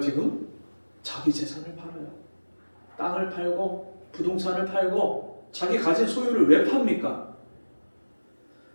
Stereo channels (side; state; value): both; inverted; correlation -1.00